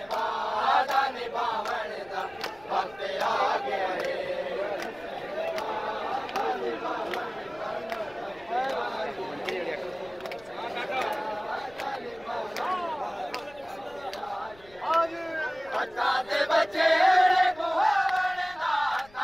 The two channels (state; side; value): noise; left; rumble, 25 dB below the sound